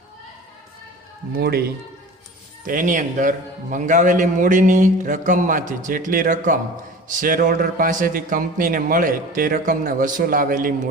મૂડી તો એની અંદર મંગાવેલી મૂડીની રકમમાંથી જેટલી રકમ શેર હોલ્ડર પાસેથી કંપનીને મળે તે રકમને વસૂલ આવેલી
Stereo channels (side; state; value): both; normal; correlation 0.38